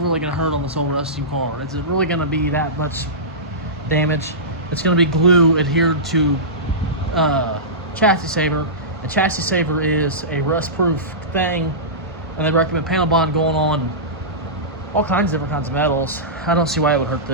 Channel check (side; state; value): both; normal; correlation -0.19